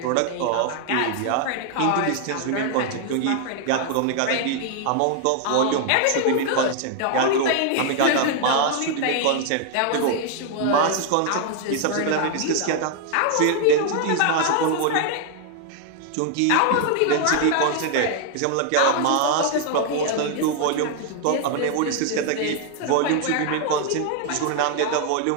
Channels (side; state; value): both; different; correlation 0.00